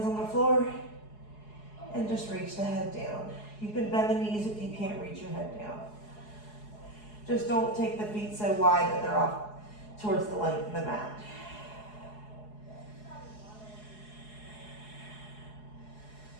on the floor and just reach the head down. You can bend the knees if you can't reach your head down. Just don't take the feet so wide that they're off towards the length of the mat.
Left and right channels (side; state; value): right; late; 4.8 ms